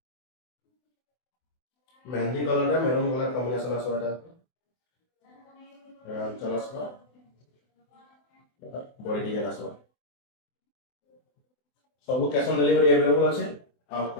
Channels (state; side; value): late; right; 24 ms